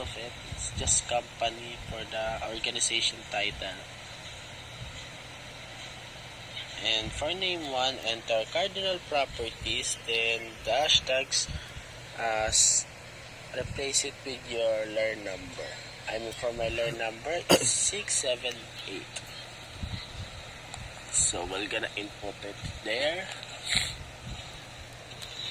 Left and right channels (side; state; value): both; identical; correlation 1.00